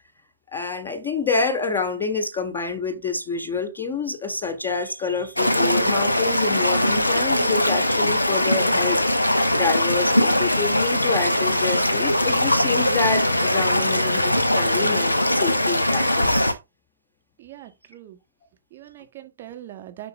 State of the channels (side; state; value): both; inverted; correlation -0.75